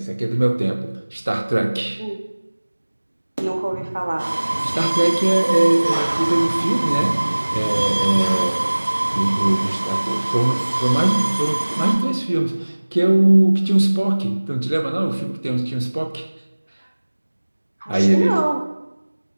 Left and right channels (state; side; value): inverted; both; correlation -1.00